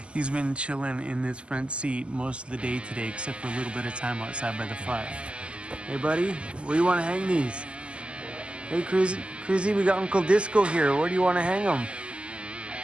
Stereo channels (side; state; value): left; late; 0.054 ms